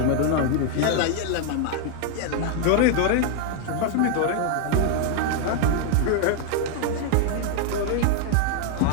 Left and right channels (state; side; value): different; both; correlation 0.00